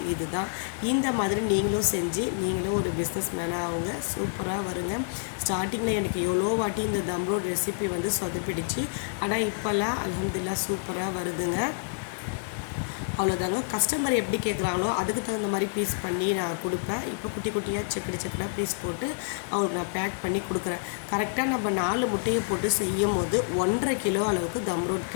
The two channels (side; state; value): right; silent; digital silence